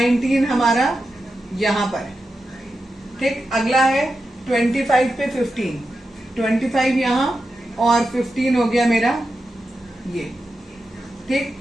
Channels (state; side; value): normal; both; correlation 0.90